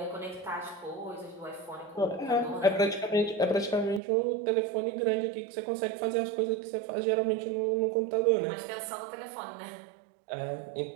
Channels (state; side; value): drops out; left; at 4.0 s